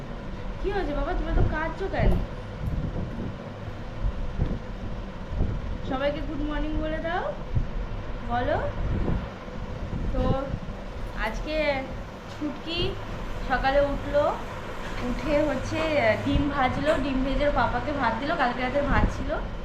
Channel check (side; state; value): both; identical; correlation 1.00